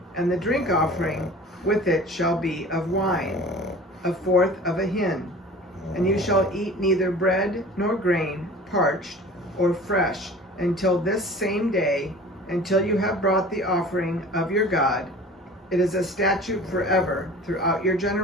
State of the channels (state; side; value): normal; both; correlation 0.42